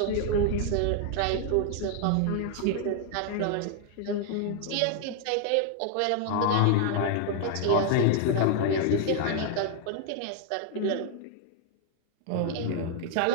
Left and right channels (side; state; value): both; different; correlation 0.00